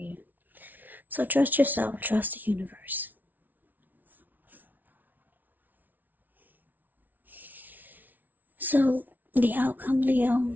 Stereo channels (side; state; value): left; late; 0.082 ms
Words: So trust yourself, trust the universe. So the outcome,